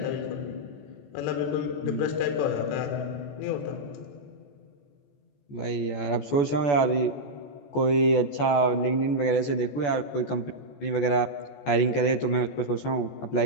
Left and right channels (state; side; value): late; right; 14 ms